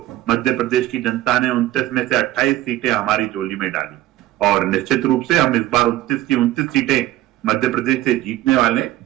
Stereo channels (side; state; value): left; quieter; 15.2 dB